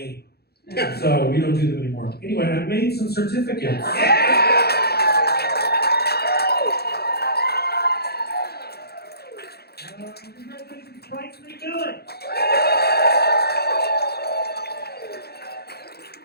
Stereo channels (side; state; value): right; late; 0.46 ms